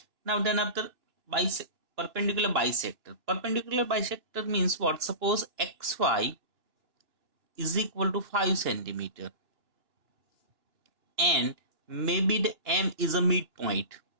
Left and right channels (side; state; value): left; late; 2.6 ms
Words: Now then after perpendicular bisector. Perpendicular bisector means what? Suppose xy is equal to 5 centimeter and maybe the M is a midpoint.